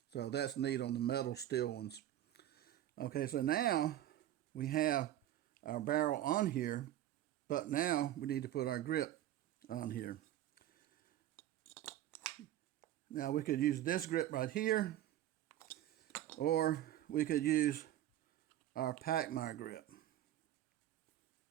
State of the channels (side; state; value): left; quieter; 12.7 dB